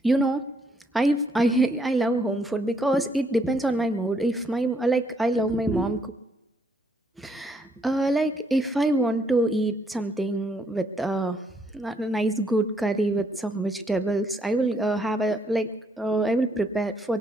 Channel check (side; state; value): both; normal; correlation 0.71